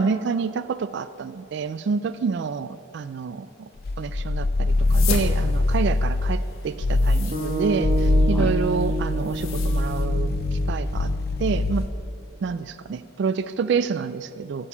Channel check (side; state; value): both; normal; correlation 0.66